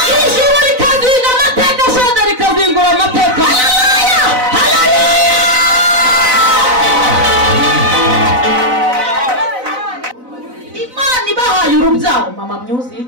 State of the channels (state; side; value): late; left; 4.0 ms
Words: Ijuru rikazinga amateka, shaza rikazingura amateka. Urubyaro mama music,